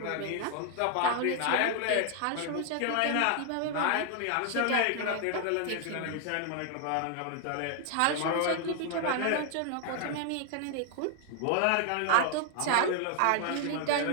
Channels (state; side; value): different; both; correlation 0.00